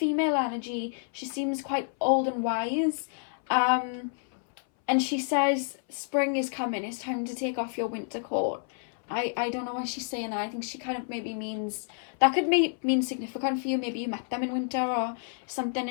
energy. She seems quite old and wise. And she says, spring is coming, it's time to take off your winter coat. I don't know why she's saying that. I think she kind of maybe means, that could mean significant for you. Maybe you met them in winter or something,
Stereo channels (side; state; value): right; silent; 58 dB below the other